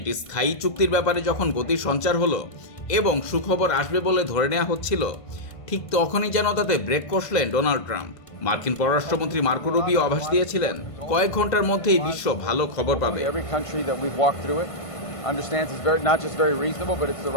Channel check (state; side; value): late; right; 1.5 ms